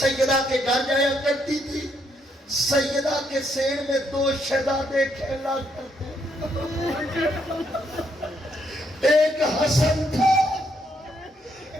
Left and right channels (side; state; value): both; normal; correlation 0.74